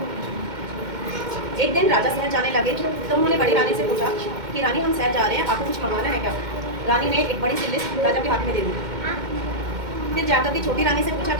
एक दिन राजा शहर जाने लगे तो उन्होंने बड़ी रानी से पूछा कि रानी हम शहर जा रहे हैं, आपको कुछ मंगवाना है क्या? रानी ने एक बड़ी सी लिस्ट राजा के हाथ में दे दी। फिर जाकर के छोटी रानी से पूछा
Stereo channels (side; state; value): left; late; 2.1 ms